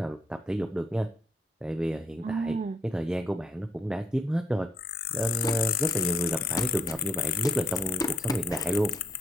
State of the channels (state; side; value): normal; both; correlation 0.68